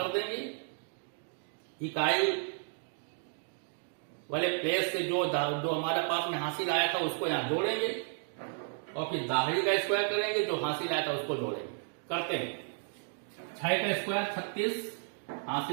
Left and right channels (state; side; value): silent; left; 56 dB below the other